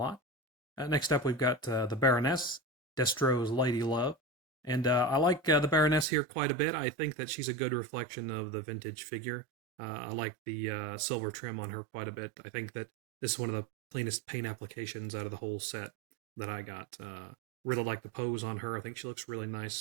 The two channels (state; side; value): drops out; left; at 6.1 s